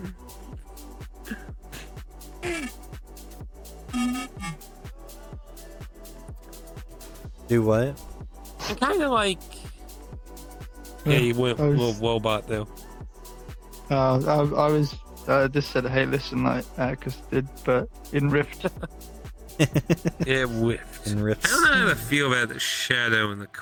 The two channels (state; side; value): identical; both; correlation 1.00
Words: Do what? I'm kind of like Yeah, you went I was- little robot though. I was just said, hey, listen, like Atticus did, but in Rift. Yeah, whiffed. In I rifts. don't know how to feel about the shadow in the